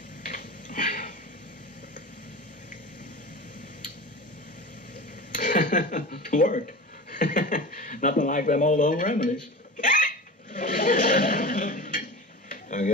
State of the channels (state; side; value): normal; both; correlation 0.31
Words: Worked. Nothing like them old home remedies. I